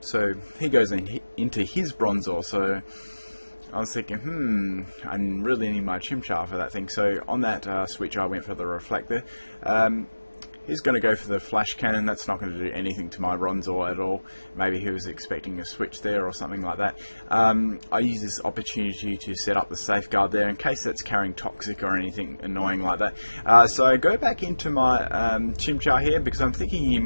So he goes into his Bronzor, so I was thinking, I really need my Chimchar for that thing. So on that switch I went for the Reflector. He's going to go for the Flash Cannon. That's not going to do anything to my Bronzor at all. Maybe he was expecting a switch there or something like that. I use this opportunity to set up the Safeguard there in case that's carrying Toxic or anything annoying like that. So I go back into my Chimchar here because I'm thinking he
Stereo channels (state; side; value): inverted; both; correlation -1.00